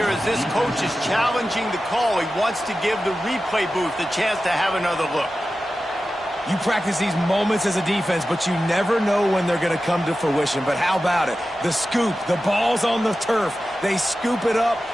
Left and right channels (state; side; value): normal; both; correlation 0.93